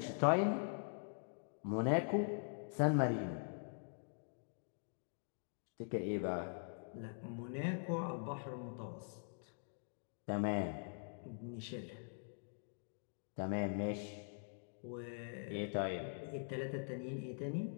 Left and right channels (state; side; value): silent; right; digital silence